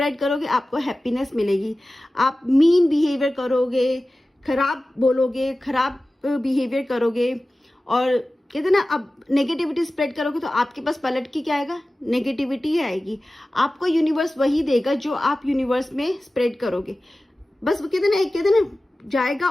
करोगे, आपको हैप्पीनेस मिलेगी। आप मीन बिहेवियर करोगे, खराब बोलोगे, खराब बिहेवियर करोगे, और कहते ना, अब नेगेटिविटी स्प्रेड करोगे तो आपके पास पलट के क्या आएगा, नेगेटिविटी ही आएगी। आपको यूनिवर्स वही देगा जो आप यूनिवर्स में स्प्रेड करोगे। बस वो कहते ना जाएगा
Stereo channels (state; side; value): normal; both; correlation 0.96